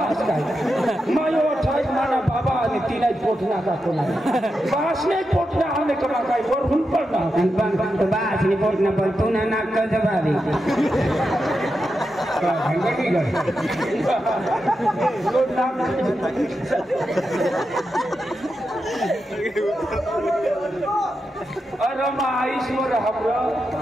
काय मायो ठाई माना बाबा आणि तिला पोटना का कोला बासने पोटना आने कमा काय वर हुन पडना बासने पोटना पण तू ना नाक जबारी भंगटी गई लोड नाम अरे मा ईश्वर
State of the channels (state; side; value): normal; both; correlation 0.88